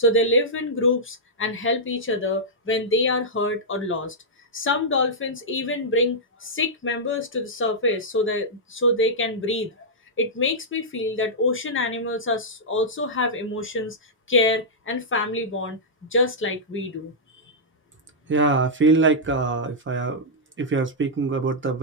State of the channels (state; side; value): normal; both; correlation -0.10